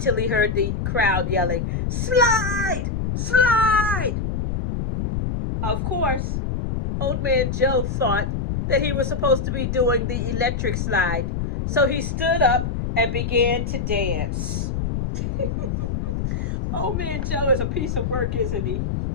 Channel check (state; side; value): noise; left; rumble, 2 dB below the sound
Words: he heard the crowd yelling, "Slide! Slide!" Of course, old man Joe thought that he was supposed to be doing the electric slide, so he stood up and began to dance. Old man Joe is a piece of work, isn't he?